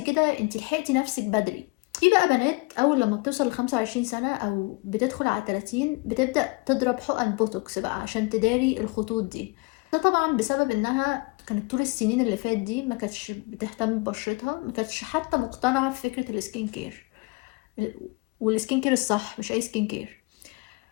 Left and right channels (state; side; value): quieter; right; 28.7 dB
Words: كده انت لحقتي نفسك بدري. في بقى بنات اول لما بتوصل ل 25 سنة او بتدخل على 30 بتبدأ تضرب حقن بوتوكس بقى عشان تداري الخطوط دي. ده طبعا بسبب انها كانت طول السنين اللي فات دي ما كانتش بتهتم ببشرتها، ما كانتش حتى مقتنعة بفكرة السكين كير، والسكين كير الصح مش اي سكين كير.